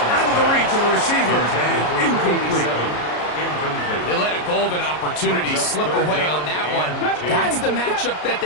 out of the reach of the receiver and incomplete. They let a golden opportunity slip away on that one. That's the matchup that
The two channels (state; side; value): late; right; 33 ms